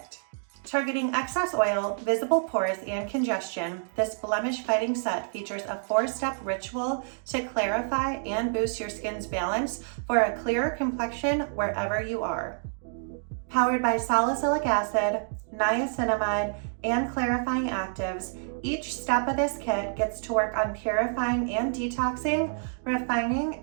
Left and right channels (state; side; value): silent; left; digital silence